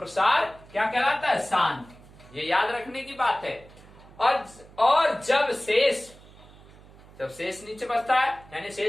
क्या कहलाता है? शांत। ये याद रखने की बात है। और जब शेष नीचे बचता है, यानी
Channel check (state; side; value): noise; right; hum, 22 dB below the sound